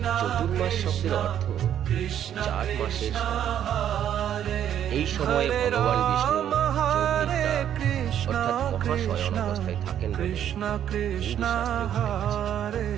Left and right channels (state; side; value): quieter; left; 10.1 dB